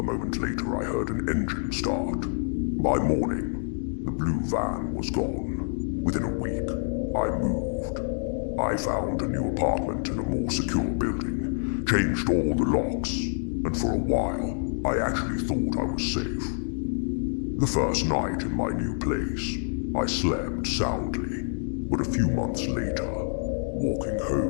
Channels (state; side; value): silent; right; digital silence